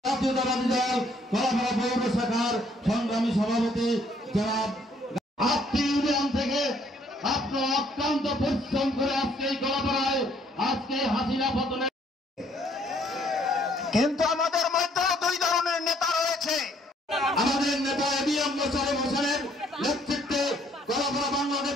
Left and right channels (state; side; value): normal; both; correlation 0.65